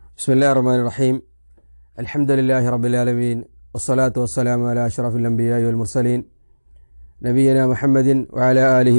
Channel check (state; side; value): inverted; both; correlation -1.00